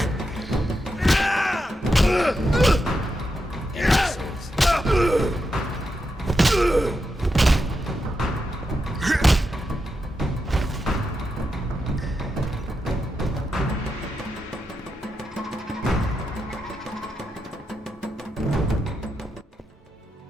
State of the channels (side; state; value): both; normal; correlation 0.86